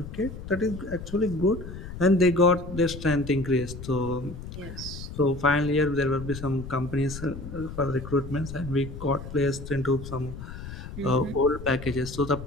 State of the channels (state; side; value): noise; left; rumble, 11 dB below the sound